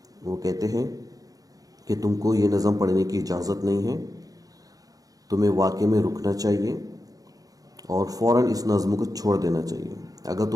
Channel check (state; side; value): late; left; 0.17 ms